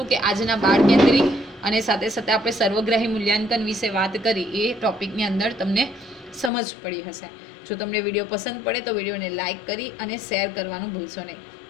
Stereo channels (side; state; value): right; drops out; at 6.5 s